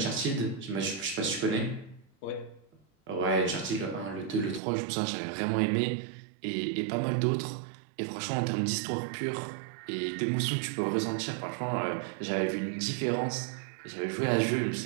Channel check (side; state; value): left; drops out; at 4.6 s